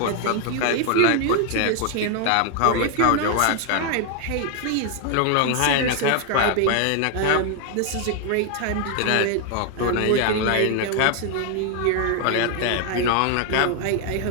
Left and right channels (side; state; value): both; different; correlation 0.00